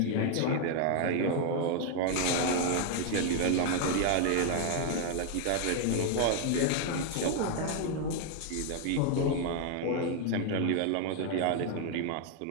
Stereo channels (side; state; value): both; different; correlation 0.00